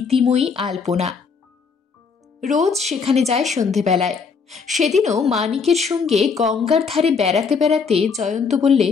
আলপনা। রোজ সেখানে যায় সন্ধেবেলায়। সেদিনও মানিকের সঙ্গে গঙ্গার ধারে বেড়াতে বেড়াতে জয়ন্ত বললে,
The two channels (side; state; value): right; quieter; 5.4 dB